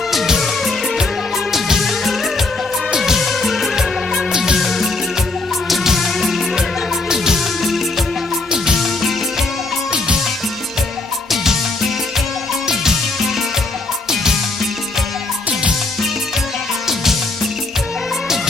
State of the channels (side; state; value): right; quieter; 3.2 dB